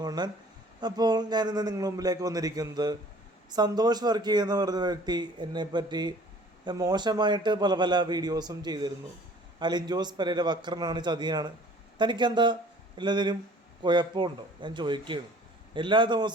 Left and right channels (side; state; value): both; normal; correlation 0.51